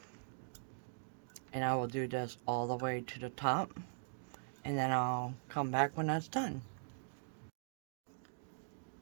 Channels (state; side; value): silent; left; digital silence